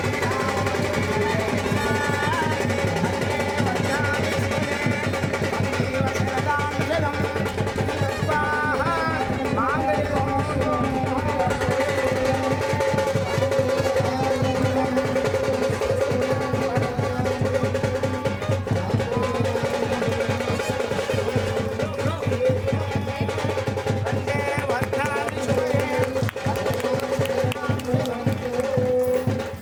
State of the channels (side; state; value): both; identical; correlation 1.00